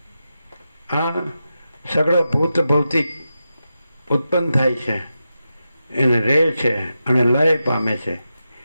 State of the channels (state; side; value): inverted; both; correlation -0.89